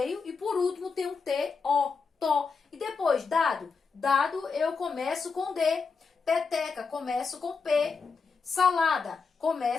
e por último tem um T-O, to. E depois, dado. Dado eu começo com D. Peteca, começo com P. Salada,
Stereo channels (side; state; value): right; quieter; 5.0 dB